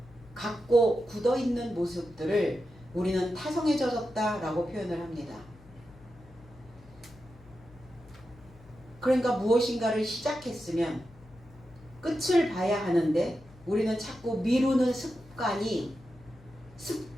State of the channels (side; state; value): left; noise; hum, 23 dB below the sound